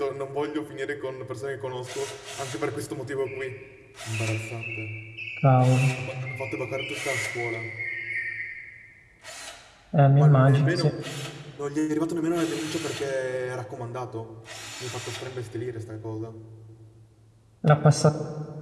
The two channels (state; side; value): identical; both; correlation 1.00